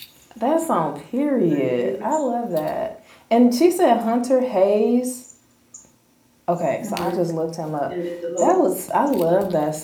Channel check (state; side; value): identical; both; correlation 1.00